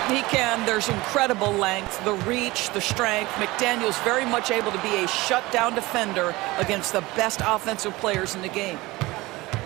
He can. There's incredible length, the reach, the strength. McDaniels very much able to be a shutdown defender against the best offensive players in the game.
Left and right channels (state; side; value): quieter; left; 20.8 dB